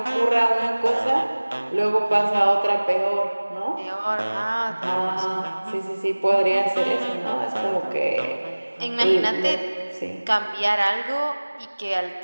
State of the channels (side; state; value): both; inverted; correlation -1.00